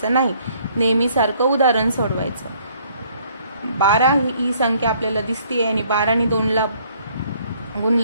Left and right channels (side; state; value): both; inverted; correlation -0.62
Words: नाही. नेहमी सारखं उदाहरण सोडवायचं. 12 ही संख्या आपल्याला दिसते आणि 12 ने 2 ला